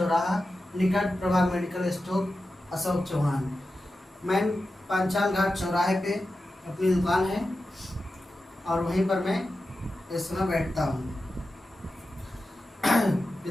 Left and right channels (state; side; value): normal; both; correlation 0.92